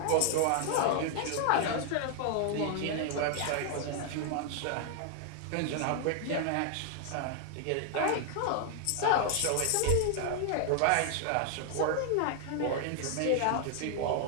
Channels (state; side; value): different; both; correlation 0.00